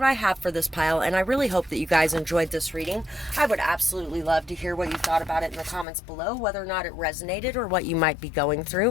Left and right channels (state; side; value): drops out; right; at 5.9 s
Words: I have for this pile, and I really hope that you guys enjoyed this reading. I would absolutely love to hear what you thought about it in the comments below, whether or not it resonated or what you might be going